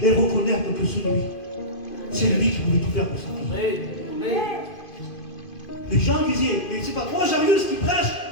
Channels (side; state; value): right; late; 2.5 ms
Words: et reconnaître que c'est lui qui pouvait tout faire pour sa vie. Les gens disaient, mais c'est pas toi, Jairus, qui prêche,